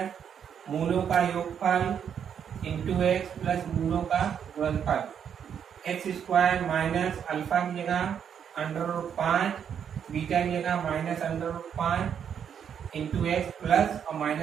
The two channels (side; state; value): left; quieter; 8.1 dB